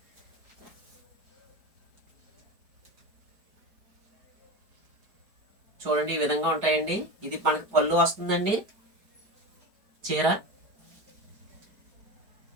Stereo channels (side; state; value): left; late; 4.8 ms